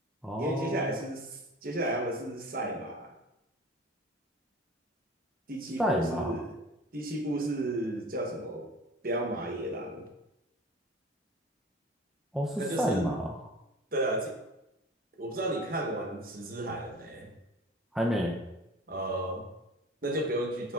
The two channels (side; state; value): both; normal; correlation 0.41